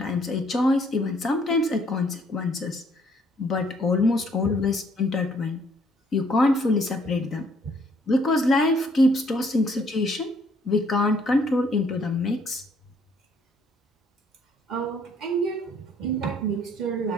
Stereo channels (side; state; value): both; normal; correlation 0.64